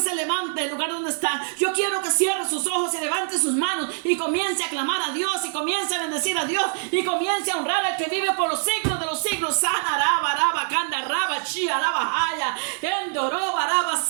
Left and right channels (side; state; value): left; silent; 63 dB below the other